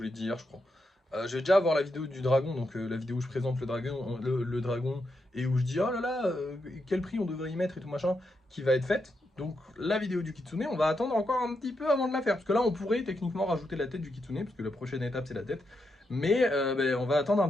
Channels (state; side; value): normal; both; correlation 0.83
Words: l'ai dit hier, je crois. Je vais déjà avoir la vidéo du dragon, donc la vidéo où je présente le dragon et où je dis oh là là, quel prix on devrait y mettre et tout machin, qui va être faite. Donc la vidéo du kitsune, on va attendre encore un petit peu avant de la faire. Parce que là, on pourrait techniquement rajouter la tête du kitsune, parce que la prochaine étape, c'est la tête. Mais on va attendre un